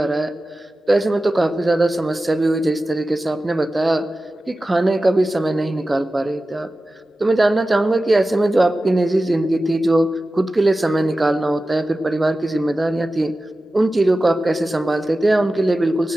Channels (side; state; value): both; normal; correlation 0.95